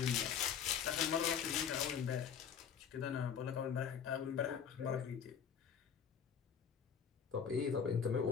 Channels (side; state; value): right; quieter; 7.4 dB